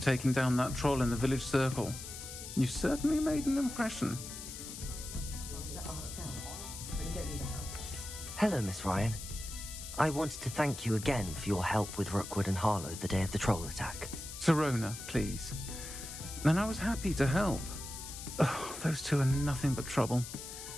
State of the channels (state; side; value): noise; left; hiss, 10 dB below the sound